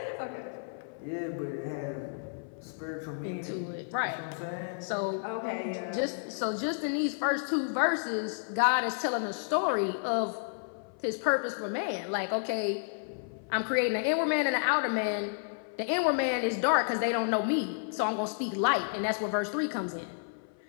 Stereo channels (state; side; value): silent; right; 56 dB below the other